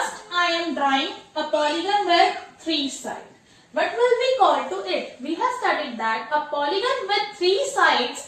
I am drawing a polygon with 3 sides. What will we call to it? We have studied that a polygon with 3 sides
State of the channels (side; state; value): both; identical; correlation 1.00